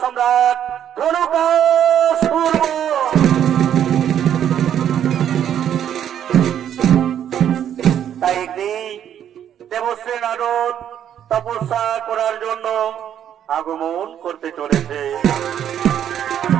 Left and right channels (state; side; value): quieter; left; 9.8 dB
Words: সম্রাট ধনুকাসুর। তাই একদিন দেবশ্রী নারদ তপস্যা করার জন্য আগমন করতে চলেছে।